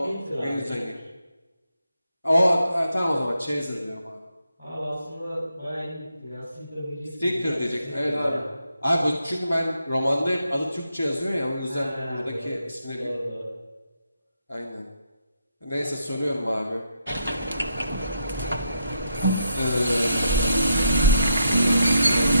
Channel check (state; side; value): inverted; both; correlation -0.79